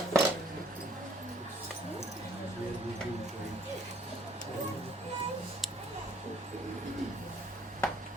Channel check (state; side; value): normal; both; correlation 0.60